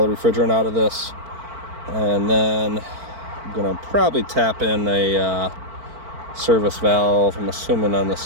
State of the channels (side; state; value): left; late; 4.5 ms